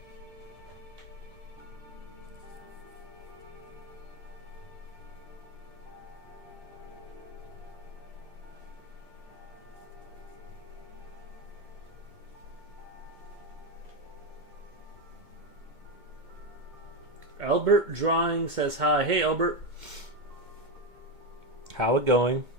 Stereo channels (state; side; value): late; left; 2.1 ms